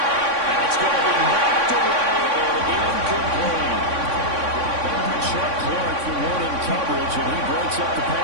And it's going to be knocked away and incomplete. Chuck Clark for one in coverage, and he breaks up the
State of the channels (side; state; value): left; late; 3.6 ms